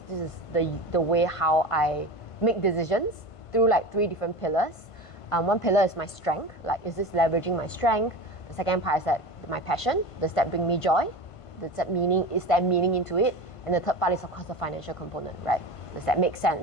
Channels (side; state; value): right; late; 1.5 ms